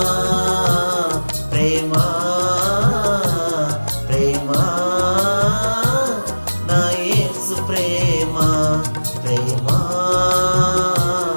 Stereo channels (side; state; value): both; inverted; correlation -1.00